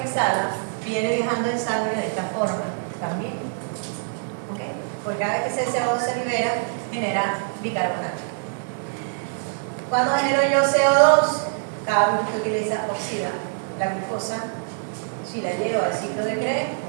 exhala, viene viajando en sangre de esta forma también. ¿Ok? Porque cada vez que ese CO2 se libera, genera bicarbonato. Cuando genero yo CO2, cada vez que usted utiliza oxida la glucosa, si la lleva al ciclo de Krebs,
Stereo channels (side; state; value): left; silent; digital silence